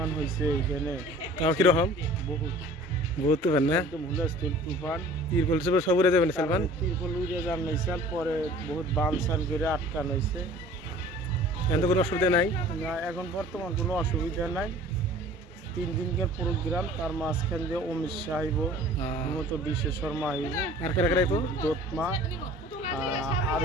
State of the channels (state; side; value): normal; both; correlation 0.47